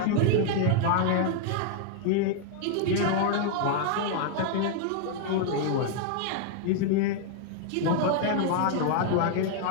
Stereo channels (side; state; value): both; different; correlation 0.00